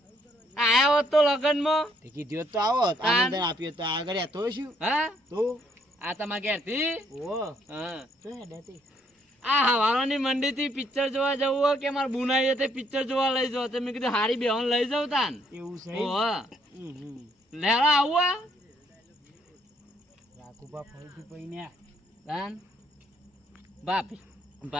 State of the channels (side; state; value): both; normal; correlation 0.69